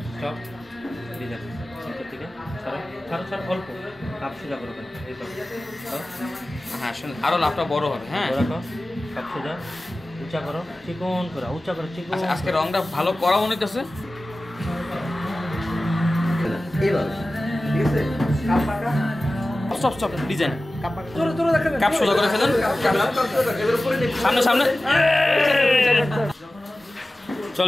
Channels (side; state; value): both; normal; correlation 0.96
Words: স্টপ ডিজাইন সেন্টার থেকে ছাড়ো ছাড়ো ছাড়ো, অল্প কাপ সোজা করো। এই তো হ্যাঁ শুনুন, আরো লাভটা বড় হবে। হ্যাঁ রাখো, কাপ সোজা উঁচা করো, চিকন করো, উঁচা করো, চিকন। আজকে রংটা ভালো করা মনে হইতেছে। স্টপ স্টপ ডিজাইন, কাপ সোজা করে ফেলুন, সামনে সামনে।